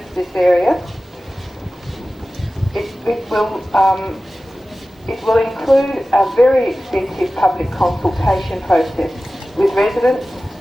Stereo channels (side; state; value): both; normal; correlation 0.96